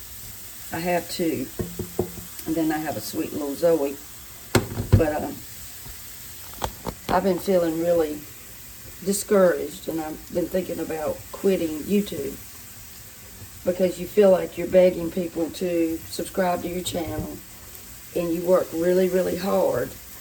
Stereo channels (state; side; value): identical; both; correlation 1.00